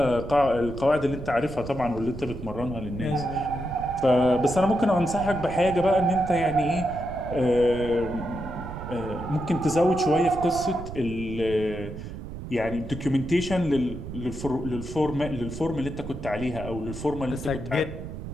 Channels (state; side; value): noise; right; rumble, 10 dB below the sound